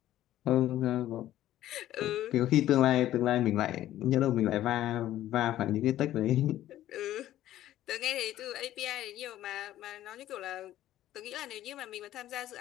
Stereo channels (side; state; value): right; quieter; 13.3 dB